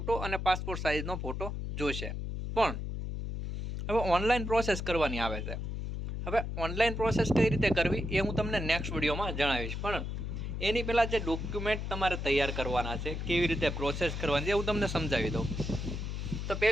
અને પાસપોર્ટ સાઇઝનો ફોટો જોશે। પણ હવે ઓનલાઈન પ્રોસેસ કરવાની આવે છે। હવે ઓનલાઈન પ્રોસેસ કઈ રીતે કરવી એ હું તમને નેક્સ્ટ વિડીયોમાં જણાવીશ, પણ એની પહેલાં જે ડોક્યુમેન્ટ તમારે તૈયાર કરવાના છે, કેવી રીતે પ્રોસેસ કરવાની છે, હું તમને સમજાવી દઉં। તો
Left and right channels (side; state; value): left; noise; hum, 4 dB below the sound